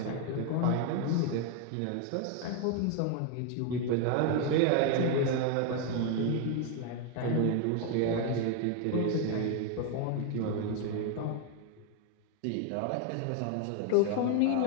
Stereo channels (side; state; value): both; different; correlation 0.01